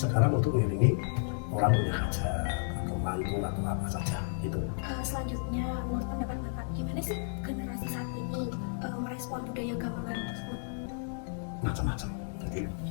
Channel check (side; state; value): right; silent; digital silence